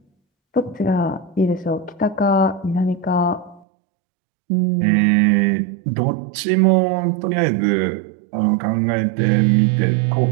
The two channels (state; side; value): drops out; left; at 3.6 s